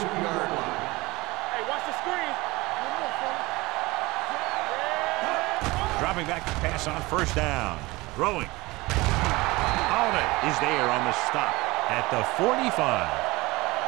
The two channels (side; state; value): left; quieter; 21.7 dB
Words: line. Hey, watch the screen. Dropping back to pass on first down. Throwing. Holiday is there on the stop at the 45.